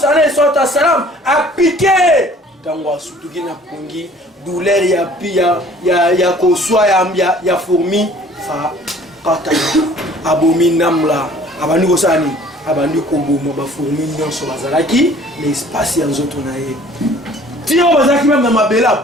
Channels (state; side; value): normal; both; correlation 0.53